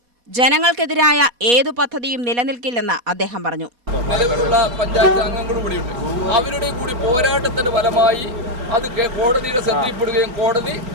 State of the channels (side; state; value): left; late; 4.2 ms